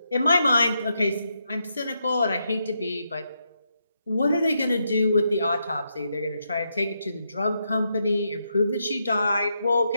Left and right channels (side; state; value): both; inverted; correlation -0.81